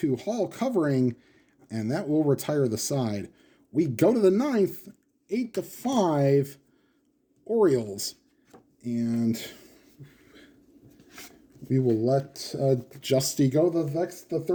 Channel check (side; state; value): both; identical; correlation 1.00